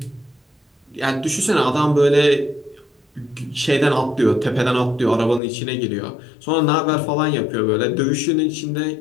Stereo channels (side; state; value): right; drops out; at 5.4 s